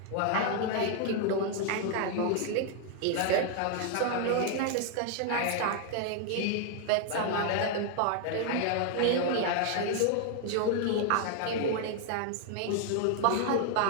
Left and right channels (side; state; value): both; different; correlation 0.00